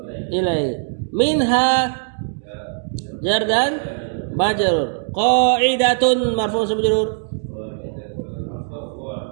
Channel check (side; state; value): left; silent; digital silence